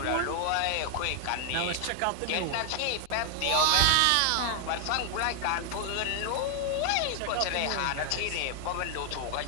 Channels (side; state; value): both; different; correlation 0.00